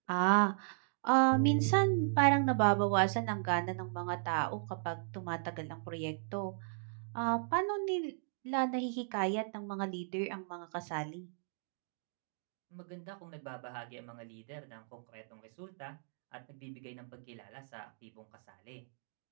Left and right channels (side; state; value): left; silent; digital silence